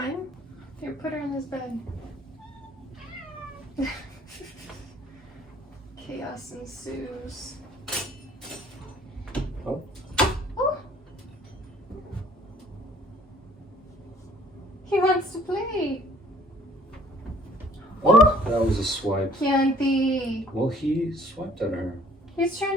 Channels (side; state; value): both; normal; correlation 0.56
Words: Here, put her in this bed. Chaos ensues. Oh. Oh! He wants to play. Oh, that was a swipe. Chianti. Well, he swiped at her. He's